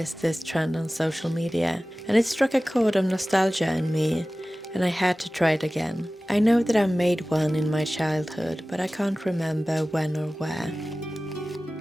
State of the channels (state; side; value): normal; both; correlation 0.97